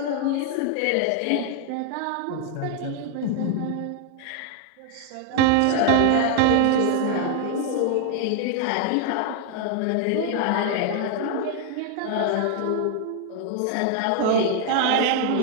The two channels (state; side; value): different; both; correlation 0.00